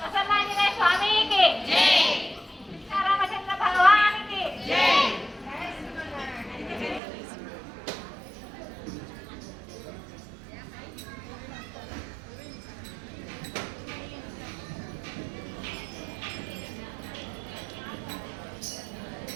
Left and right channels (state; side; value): drops out; left; at 7.0 s